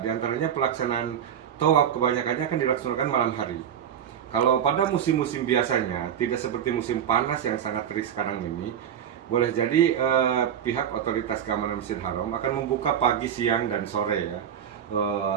antaranya pelaksanaan tawaf kebanyakannya akan dilaksanakan malam hari. Kalau pada musim-musim biasanya, tidak seperti musim panas yang sangat terik sekarang ini, boleh jadi pihak otoritas keamanan Masjidil Haram akan membuka pagi, siang, dan sore ya.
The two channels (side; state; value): left; quieter; 9.0 dB